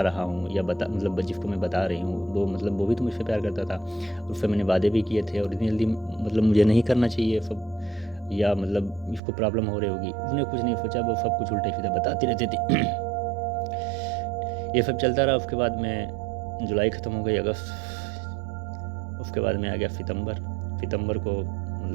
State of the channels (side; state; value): left; drops out; at 9.2 s